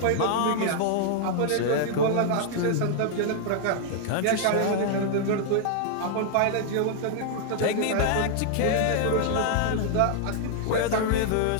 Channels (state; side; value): different; both; correlation 0.00